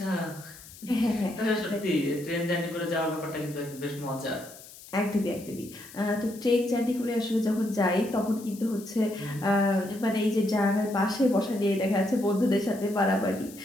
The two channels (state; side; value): noise; left; hiss, 18 dB below the sound